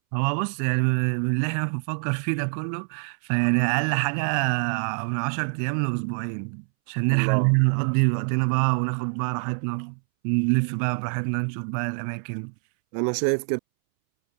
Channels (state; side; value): silent; left; 62 dB below the other